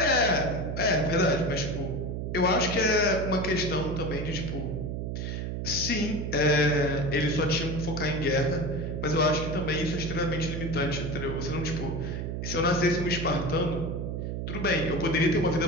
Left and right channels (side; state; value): right; noise; hum, 3 dB below the sound